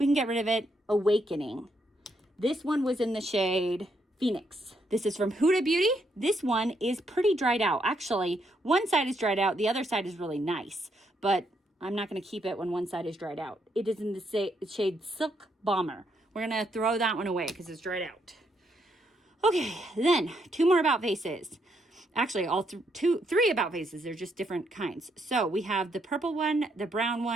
can get rid of it. Awakening. This one was in the shade Phoenix. This is from Huda Beauty. This one is pretty dried out. Actually, one side is dried out. The other side is really nice, but I'm not going to keep it when one side is dried out. It is in the shade Silk Bomber. We're going to throw that one away because it's dried out. Okay, then 2 more About Faces. Actually, all 3 About Faces. They're just different kinds. So we have the purple one, the brown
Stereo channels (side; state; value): both; normal; correlation 0.76